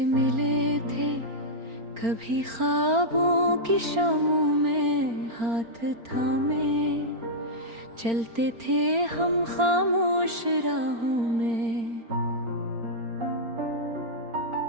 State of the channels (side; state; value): left; late; 4.4 ms